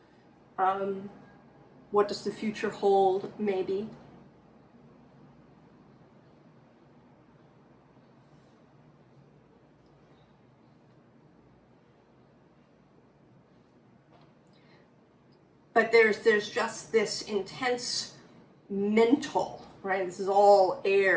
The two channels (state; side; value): identical; both; correlation 1.00